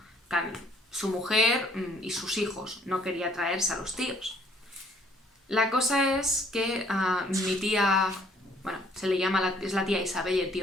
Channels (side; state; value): both; normal; correlation 0.62